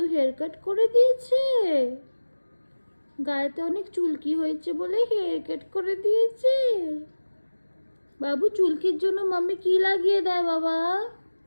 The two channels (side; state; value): both; inverted; correlation -1.00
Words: হেয়ার কাট করে দিয়েছে। গায়েতে অনেক চুলকি হয়েছে বলে হেয়ার কাট করে দিয়েছে। বাবু চুলকির জন্য মাম্মি কি লাগিয়ে দেয় বাবা?